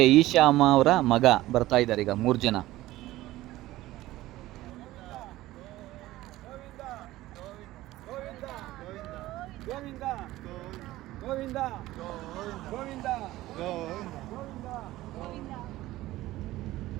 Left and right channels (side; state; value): left; quieter; 16.6 dB